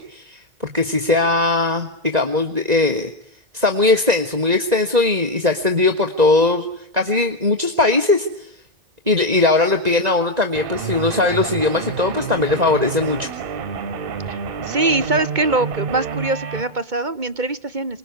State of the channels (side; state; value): left; late; 1.9 ms